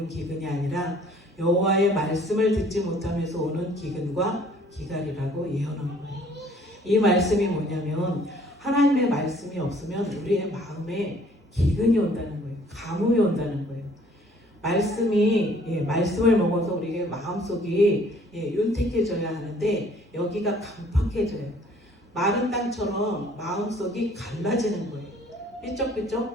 기근이 아니라 여호와의 말씀을 듣지 못하면서 오는 기근과 기갈이라고 예언한 거예요. 이 말씀이 뭐냐면 하나님의 말씀이 없으면 우리의 마음에 기근이 온다는 거예요. 가뭄이 온다는 거예요. 말씀을 먹어서 우리의 마음속이 윤택해져야 하는데 여기가 강팍해져요. 마른 땅처럼 마음속이 갈라지는 거예요.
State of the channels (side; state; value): both; normal; correlation 0.58